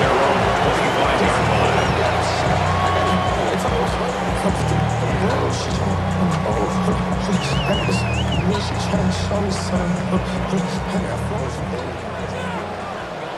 own 25-yard line.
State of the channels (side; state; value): both; identical; correlation 1.00